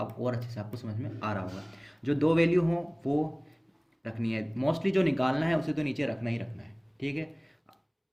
और अच्छे से आपको समझ में आ रहा होगा। जो दो वैल्यू हो वो रखनी है, मोस्टली जो निकालना है उसे तो नीचे रखना ही रखना है, ठीक है।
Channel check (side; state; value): both; identical; correlation 1.00